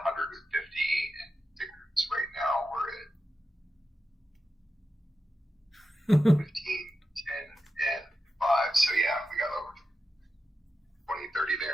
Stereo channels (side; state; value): both; normal; correlation 0.90